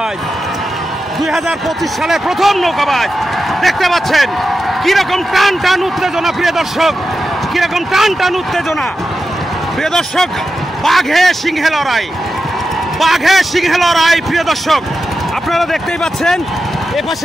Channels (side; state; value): both; normal; correlation 0.90